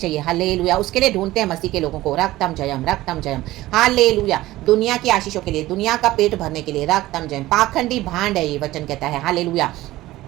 हालेलुया। उसके लिए ढूंढते हैं मसीह के लोगों को। रक्तम जयम, रक्तम जयम। हालेलुया। दुनिया की आशीषों के लिए, दुनिया का पेट भरने के लिए। रक्तम जयम। पाखंडी भांड है ये वचन कहता है। हालेलुया।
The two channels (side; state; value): left; quieter; 16.9 dB